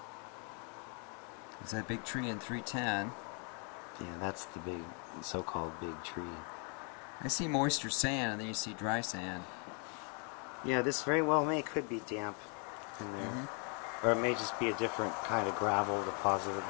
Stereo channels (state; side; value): quieter; right; 38.0 dB